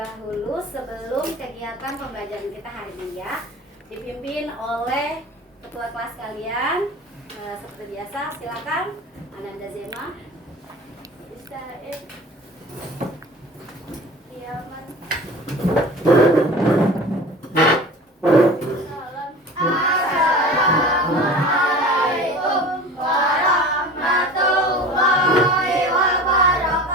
sebelum kegiatan pembelajaran kita hari ini ya. Dipimpin oleh ketua kelas kalian. Seperti biasa, silakan Ananda Zema. Ustaz Kiamat. Assalamualaikum warahmatullahi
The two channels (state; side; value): normal; both; correlation 0.39